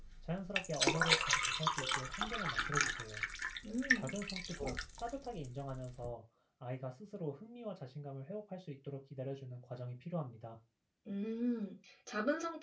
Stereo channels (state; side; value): identical; both; correlation 1.00